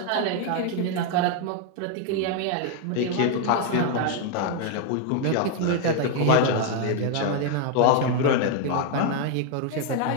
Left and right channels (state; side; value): different; both; correlation 0.00